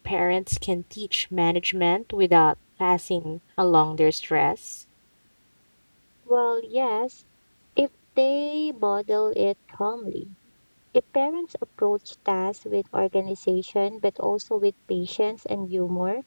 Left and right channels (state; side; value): inverted; both; correlation -1.00